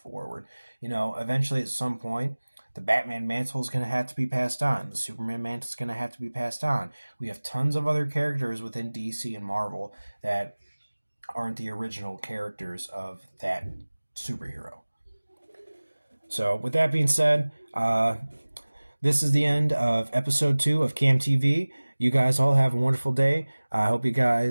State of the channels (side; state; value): both; inverted; correlation -1.00